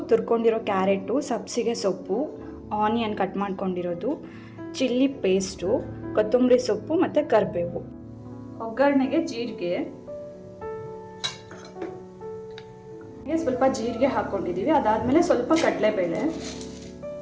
ತುರ್ಕೊಂಡಿರೋ carrot, ಸಬ್ಸಿಗೆ ಸೊಪ್ಪು, ಆನಿಯನ್ ಕಟ್ ಮಾಡ್ಕೊಂಡಿರೋದು, ಚಿಲ್ಲಿ ಪೇಸ್ಟು, ಕೊತ್ತಂಬರಿ ಸೊಪ್ಪು ಮತ್ತು ಕರಿಬೇವು. ಒಗ್ಗರಣೆಗೆ ಸ್ವಲ್ಪ ಜೀರಿಗೆ ಹಾಕ್ಕೊಂಡಿದ್ದೀವಿ. ಅದಾದಮೇಲೆ ಸ್ವಲ್ಪ ಕಡಲೆಬೇಳೆ,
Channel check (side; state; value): both; identical; correlation 1.00